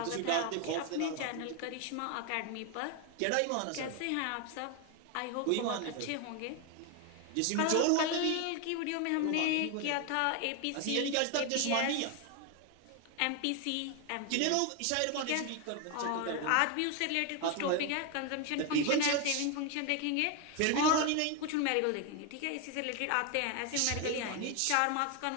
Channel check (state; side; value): different; both; correlation 0.01